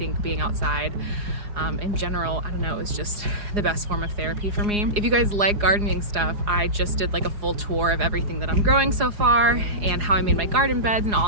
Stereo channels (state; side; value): late; left; 4.9 ms